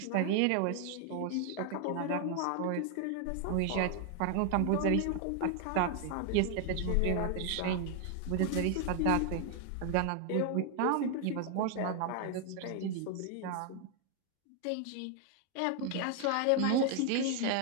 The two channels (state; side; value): different; both; correlation 0.00